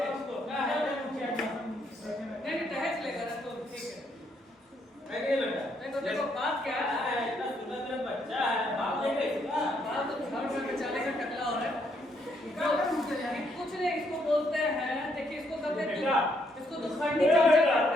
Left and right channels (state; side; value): normal; both; correlation 0.73